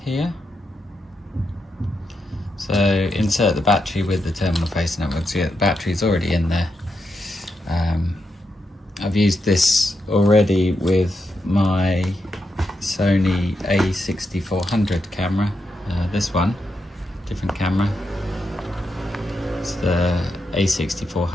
here, so insert the battery with the terminal facing upwards. So yeah, the battery's already in there. I've used this already with my Sony A6400 camera. This one, different camera. It's the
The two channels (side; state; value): both; normal; correlation 0.84